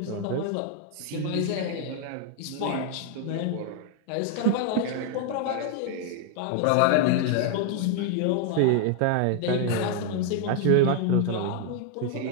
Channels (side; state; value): both; different; correlation 0.00